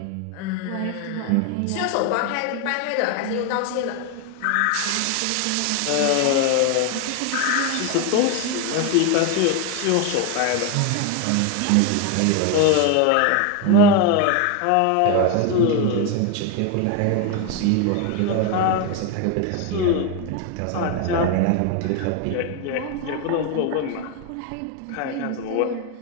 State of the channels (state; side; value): different; both; correlation 0.01